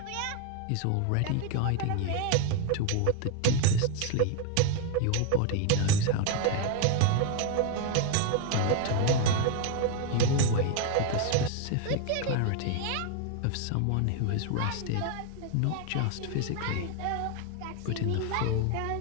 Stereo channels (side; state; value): both; different; correlation 0.01